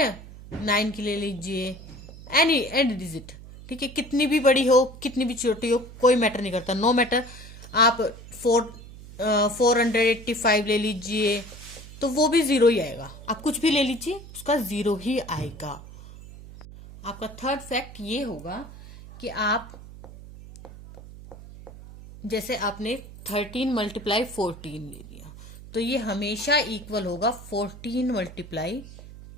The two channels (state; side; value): noise; right; hum, 16 dB below the sound